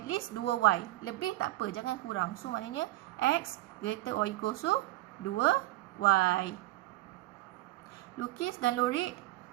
least 2y. Lebih tak apa. Jangan kurang. So maknanya x greater or equals to 2y. Lukis dan lorek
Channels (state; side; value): quieter; left; 17.3 dB